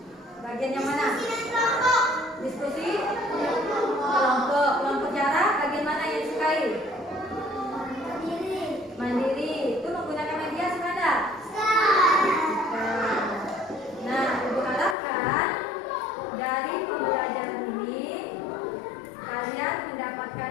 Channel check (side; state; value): right; drops out; at 15.0 s